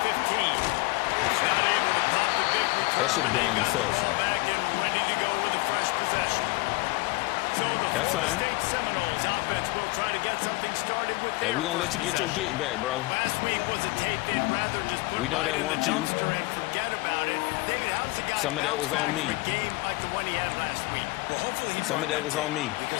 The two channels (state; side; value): quieter; right; 24.2 dB